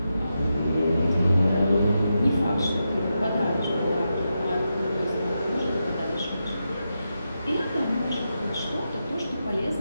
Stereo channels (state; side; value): inverted; both; correlation -0.87